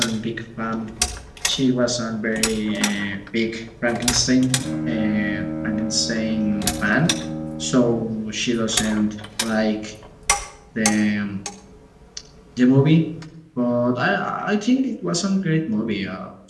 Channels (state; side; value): identical; both; correlation 1.00